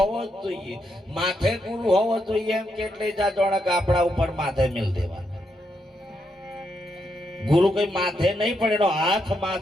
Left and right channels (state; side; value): normal; both; correlation 0.80